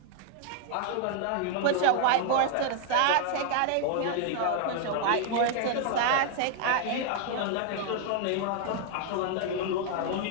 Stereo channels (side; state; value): both; different; correlation 0.00